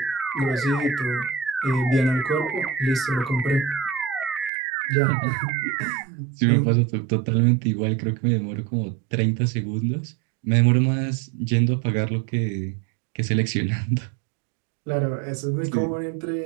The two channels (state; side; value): drops out; left; at 4.5 s